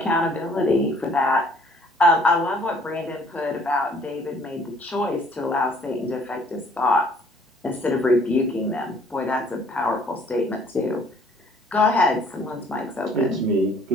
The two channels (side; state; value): both; normal; correlation 0.59